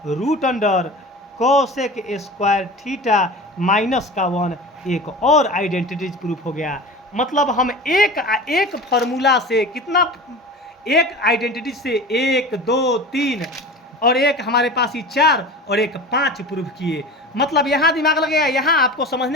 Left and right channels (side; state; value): both; normal; correlation 0.34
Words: root under cosec square theta minus का 1। एक और आइडेंटिटी प्रूफ हो गया। मतलब हम एक फार्मूला से कितना, एक आइडेंटिटी से 1 2 3 और एक हमारे पास ही 4 और एक 5 प्रूफ किए। मतलब यहाँ दिमाग लगेगा, यहाँ आपको